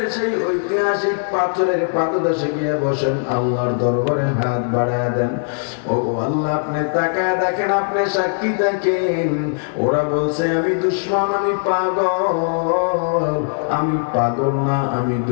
সেই ঐতিহাসিক পাথরের পাদদেশে গিয়ে বসেন, আল্লাহর দরবারে হাত বাড়ায় দেন। ও আল্লাহ, আপনি তাকায় দেখেন, আপনি সাক্ষী থাকেন। ওরা বলছে আমি দুশমন, আমি পাগল। আমি পাগল না, আমি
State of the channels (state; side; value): silent; right; digital silence